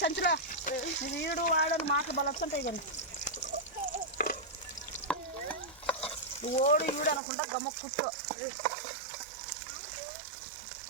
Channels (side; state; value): left; drops out; at 7.2 s